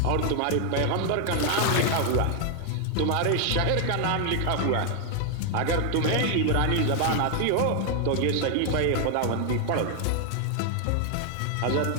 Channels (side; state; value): both; different; correlation 0.00